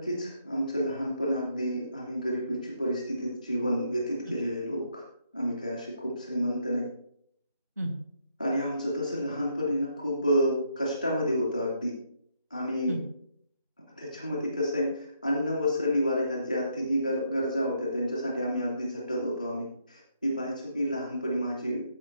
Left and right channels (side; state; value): both; inverted; correlation -0.74